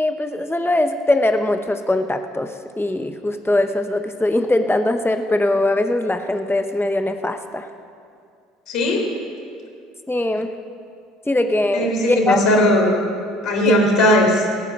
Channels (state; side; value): normal; both; correlation 0.68